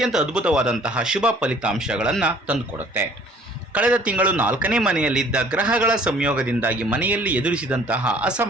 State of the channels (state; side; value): normal; both; correlation 0.54